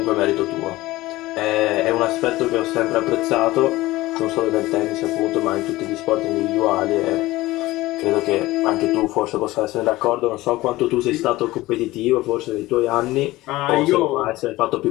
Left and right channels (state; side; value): quieter; right; 18.3 dB